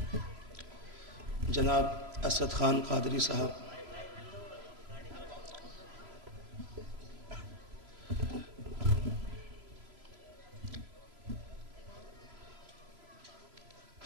جناب اسد خان قادری صاحب،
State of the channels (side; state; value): left; late; 3.0 ms